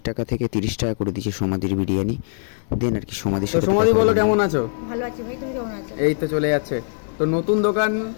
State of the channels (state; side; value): silent; right; digital silence